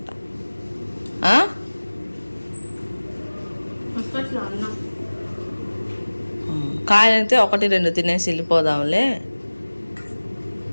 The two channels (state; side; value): inverted; both; correlation -1.00